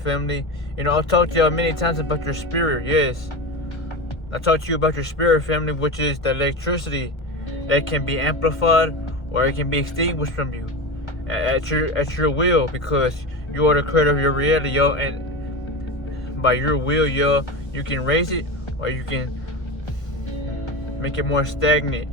I've talked to y'all many times about your spirit, yes. I talked to you about your spirit, family, which is the electricity that can be amplified or it can be extinguished from you at your will, because you are the creator of your reality, yo. And by your will, yo, you can raise it or you can make it more stagnant,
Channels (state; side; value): late; right; 1.2 ms